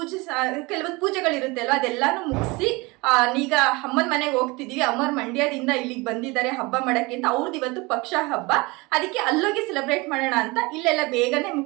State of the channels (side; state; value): left; quieter; 24.8 dB